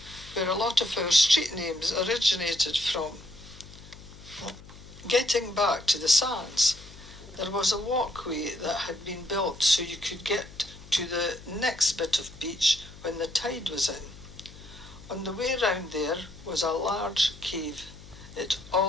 where a lot of our street names originated from. Getting back to the sands, there was a walkway that had been built so you could get to the next bit of beach when the tide was in. On the way round there was a large cave. It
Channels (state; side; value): noise; left; hum, 18 dB below the sound